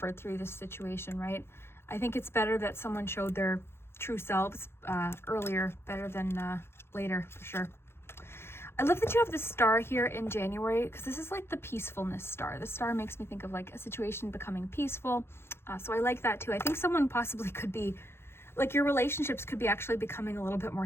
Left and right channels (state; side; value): late; right; 0.12 ms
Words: through this situation, right? I think it's better that someone showed their true selves earlier, better than later, for sure. I love that you have the star here in January, because this is like the peacefulness star. The star makes me think of like a situation becoming peaceful. So I like that too. I think someone possibly could be, like your relationships could be actually becoming a little bit more